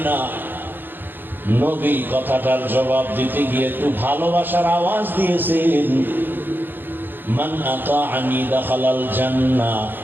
না? নবী কথাটার জবাব দিতে গিয়ে একটু ভালোবাসার আওয়াজ দিয়েছেন, মান আতাআনি দাখালাল জান্নাহ,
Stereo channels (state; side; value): late; left; 0.095 ms